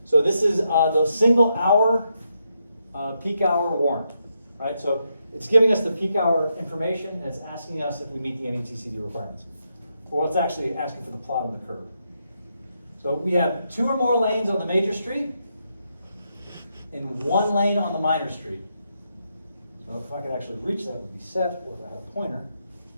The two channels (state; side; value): inverted; both; correlation -0.81